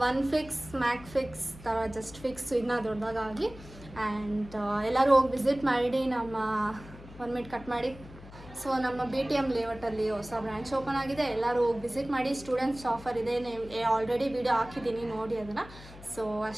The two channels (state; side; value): noise; left; hum, 17 dB below the sound